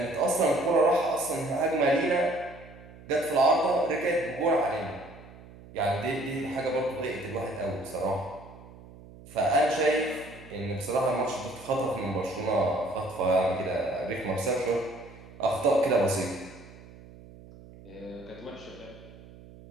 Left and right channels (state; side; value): noise; right; hum, 19 dB below the sound